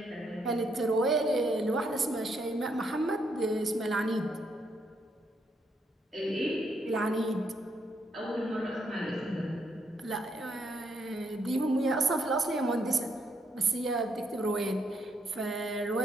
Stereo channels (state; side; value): normal; both; correlation 0.75